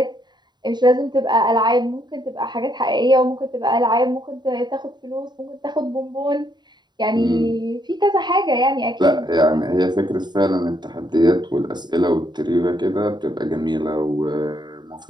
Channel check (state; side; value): late; left; 0.21 ms